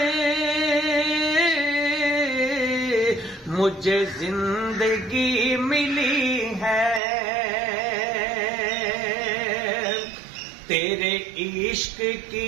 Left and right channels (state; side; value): drops out; left; at 7.0 s